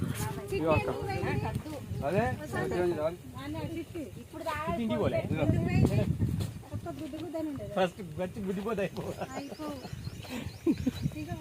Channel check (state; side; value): identical; both; correlation 1.00